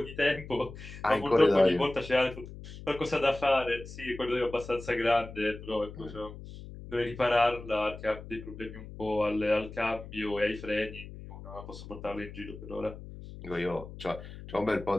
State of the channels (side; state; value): left; noise; hum, 13 dB below the sound